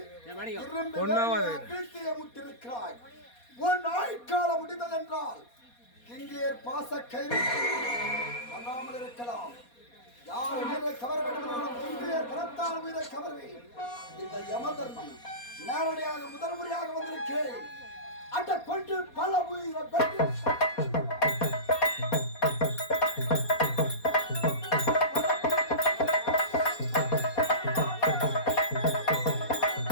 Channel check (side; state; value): right; late; 4.2 ms